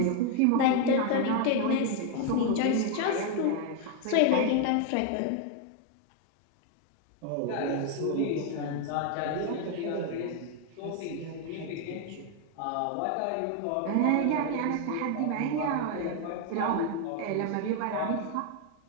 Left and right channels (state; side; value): different; both; correlation 0.01